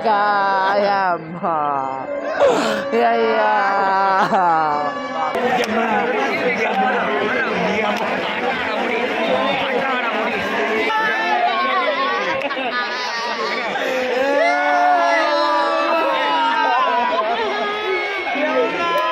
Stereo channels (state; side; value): identical; both; correlation 1.00